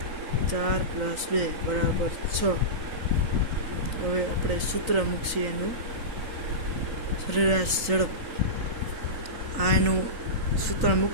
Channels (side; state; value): left; late; 3.8 ms